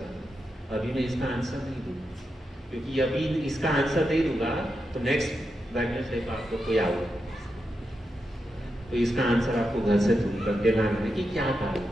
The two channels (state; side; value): normal; both; correlation 0.87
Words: अभी मैं इसका आंसर नहीं दूंगा, क्योंकि अभी इसका आंसर नहीं दूंगा तो नेक्स्ट वेडनेसडे को आपको कोई आऊगा, तो इसका आंसर आपको घर से ढूंढ करके लाना है कि क्या कारण